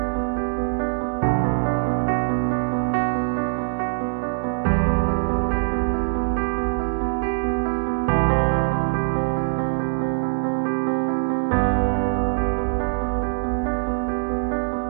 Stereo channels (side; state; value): left; silent; digital silence